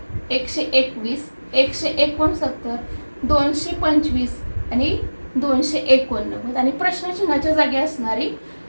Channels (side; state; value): both; inverted; correlation -1.00